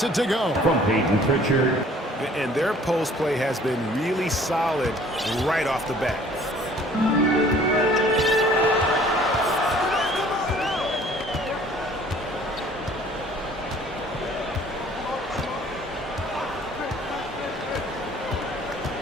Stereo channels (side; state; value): both; normal; correlation 0.54